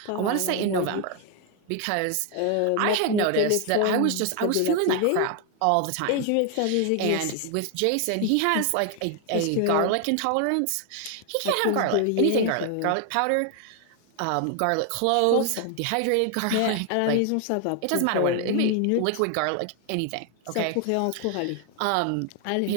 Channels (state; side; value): different; both; correlation 0.00